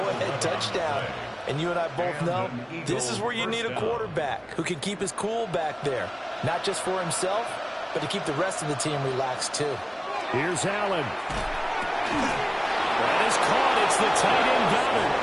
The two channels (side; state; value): both; identical; correlation 1.00